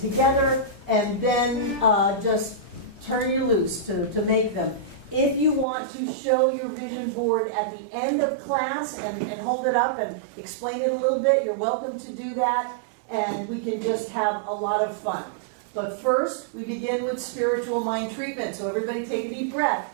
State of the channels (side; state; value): left; drops out; at 5.7 s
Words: and then just turn you loose to make them. If you want to show your vision board at the end of class and hold it up and explain it a little bit, you're welcome to do that, and we can just have a lot of fun. But first, we begin with spiritual mind treatment. So everybody take a deep breath.